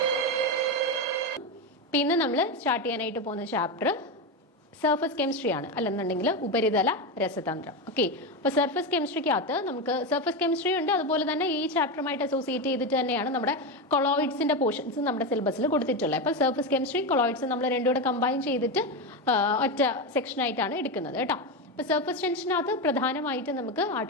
ഇന്ന് നമ്മൾ സ്റ്റാർട്ട് ചെയ്യാനായിട്ട് പോകുന്ന ചാപ്റ്റർ സർഫസ് കെമിസ്ട്രി ആണ്, അല്ലെന്നുണ്ടെങ്കിൽ ഉപരിതല രസതന്ത്രം. ഓക്കെ, അപ്പോൾ സർഫസ് കെമിസ്ട്രിക്കകത്ത് നമുക്ക് സർഫസ് കെമിസ്ട്രി ഉണ്ട്, അതുപോലെ തന്നെ ഈ ചാപ്റ്ററുമായിട്ട് അസോസിയേറ്റ് ചെയ്തിട്ട് തന്നെയാണ് നമ്മുടെ കൊളോയിഡ്സിന്റെ പോർഷൻസ് നമ്മുടെ സിലബസിൽ കൊടുത്തിട്ടുള്ളത്. അപ്പോൾ സർഫസ് കെമിസ്ട്രി കൊളോയിഡ്സ് നമ്മൾ രണ്ടും കൂടെ കമ്പൈൻ ചെയ്തിട്ട് ഒറ്റ സെക്ഷനായിട്ടാണ് എടുക്കുന്നത് കേട്ടോ. ഇപ്പോൾ സർഫസ് ടെൻഷനകത്ത് പ്രധാനമായിട്ട് നമുക്ക്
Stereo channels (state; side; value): normal; both; correlation 0.14